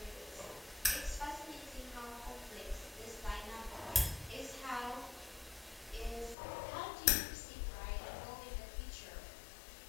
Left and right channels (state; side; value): drops out; right; at 6.4 s